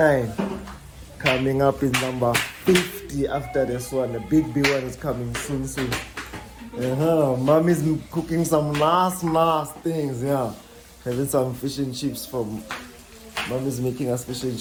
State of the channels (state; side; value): identical; both; correlation 1.00